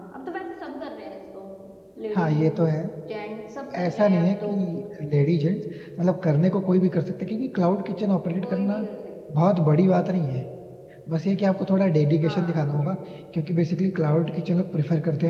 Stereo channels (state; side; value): identical; both; correlation 1.00